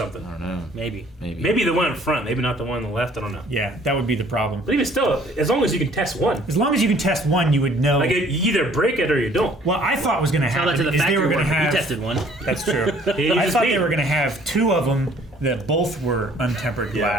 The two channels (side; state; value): both; normal; correlation 0.57